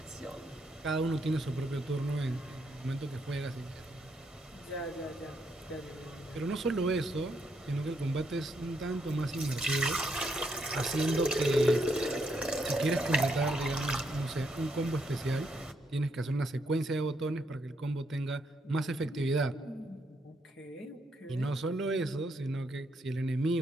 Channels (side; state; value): both; normal; correlation 0.76